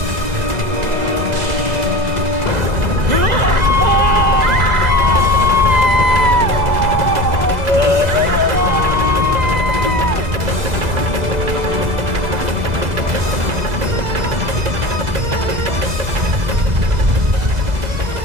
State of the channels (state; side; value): late; left; 2.0 ms